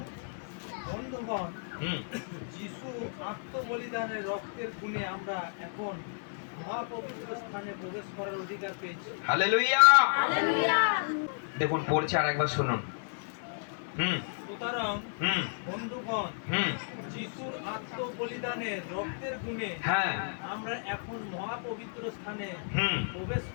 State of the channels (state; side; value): silent; right; digital silence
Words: বন্ধুগণ, হুম যিশু আত্মবলিদানের রক্তের গুণে আমরা এখন মহাপবিত্র স্থানে প্রবেশ করার অধিকার পেয়েছি। হালেলুয়া। দেখুন পড়ছে, আর একবার শুনুন। সুতরাং হুম বন্ধুগণ, হুম যিশুর আত্মবলিদানের রক্তের গুণে হ্যাঁ আমরা এখন মহাপবিত্র স্থানে হুম প্রবেশ